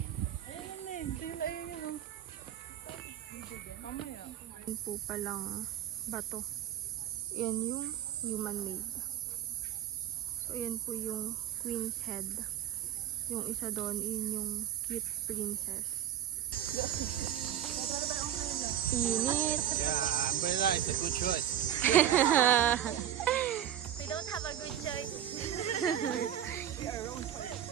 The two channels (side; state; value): left; quieter; 10.8 dB